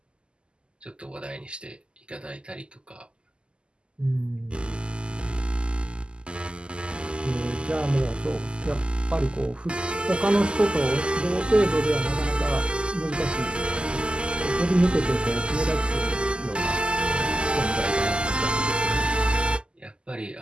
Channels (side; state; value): left; late; 0.051 ms